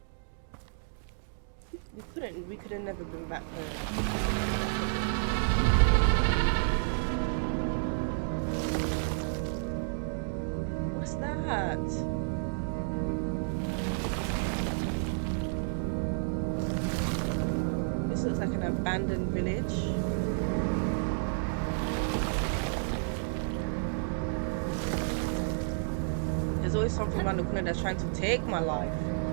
We could have never been back home. What's that? This looks like an abandoned village. There's always something around the corner that's trying to take my life.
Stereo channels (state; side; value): silent; left; digital silence